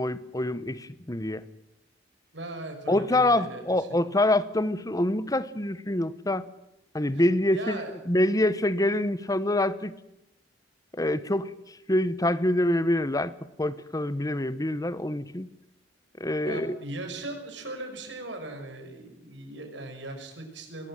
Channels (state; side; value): normal; both; correlation 0.68